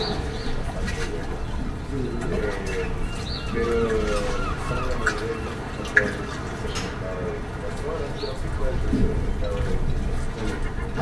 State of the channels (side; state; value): both; identical; correlation 1.00